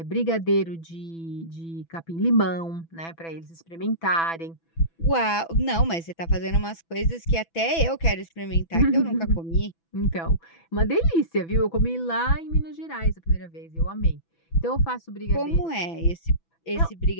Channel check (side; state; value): right; late; 6.0 ms